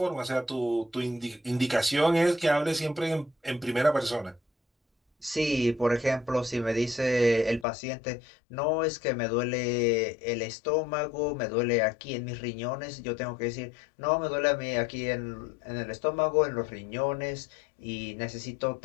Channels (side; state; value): right; drops out; at 7.7 s